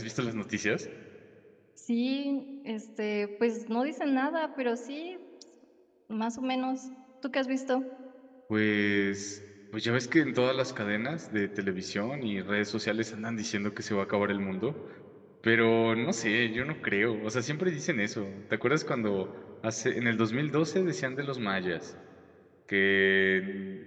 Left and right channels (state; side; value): identical; both; correlation 1.00